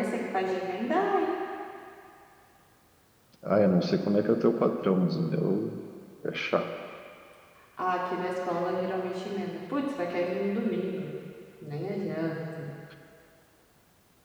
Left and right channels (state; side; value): identical; both; correlation 1.00